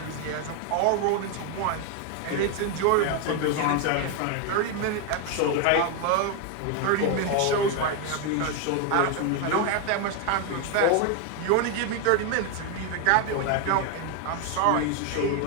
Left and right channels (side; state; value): both; different; correlation 0.01